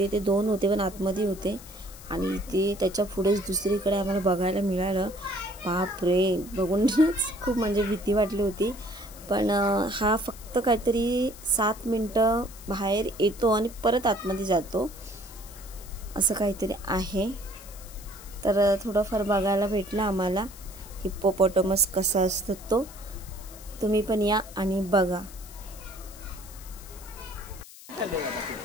ते 2 होते पण आतमध्ये होते, आणि इथे त्याच्या पुढेच दुसरीकडे आम्हाला बघायला मिळालं। बापरे, बघूनच खूप म्हणजे भीती वाटली होती, पण हा फक्त काहीतरी 7 मिनटं बाहेर येतो आणि परत आतमध्ये जातो, असं काहीतरी आहे। तर थोडंफार बघायला भेटलं आम्हाला हिप्पोपॉटमस कसा असतो तो, तुम्ही पण या आणि बघा।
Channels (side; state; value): left; noise; hiss, 18 dB below the sound